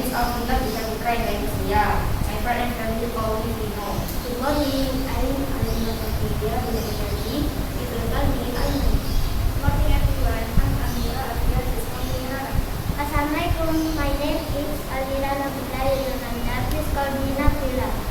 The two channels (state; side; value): identical; both; correlation 1.00